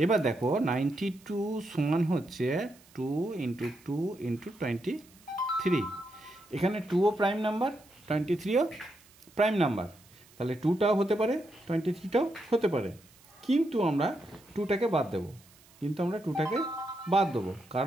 এবার দেখো 92 সমান হচ্ছে 2 × 2 × 23। এখানে 2ও প্রাইম নাম্বার, 23ও প্রাইম নাম্বার, তাহলে 2টাও হতে পারে, 23টাও হতে পারে। কিন্তু আমরা 2টাকে বাদ দেবো,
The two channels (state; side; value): noise; right; hiss, 27 dB below the sound